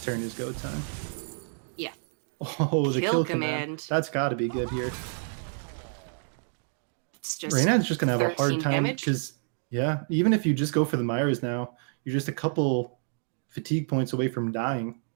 turn is go time. Yeah. Oh, the Kill command. That's got to be good here. It's just Reynad's just gonna have a hard 13 time damage. because even if you just go for the Myers now, you're just a couple fatigue points away from dying.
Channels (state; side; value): silent; left; 59 dB below the other